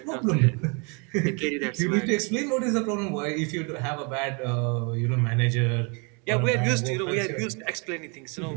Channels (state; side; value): quieter; left; 33.7 dB